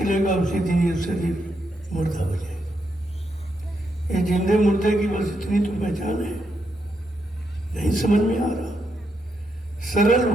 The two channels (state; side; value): normal; both; correlation 0.81